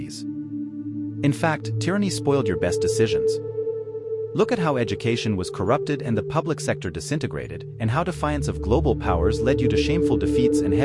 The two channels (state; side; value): identical; both; correlation 1.00